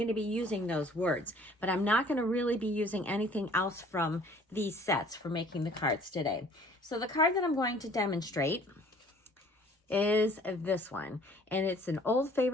to be using those words, but I'm not going to really be using anything else from these sets for making the cards today. So the card that I'm going to demonstrate is this one, and it's an old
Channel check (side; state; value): both; normal; correlation 0.54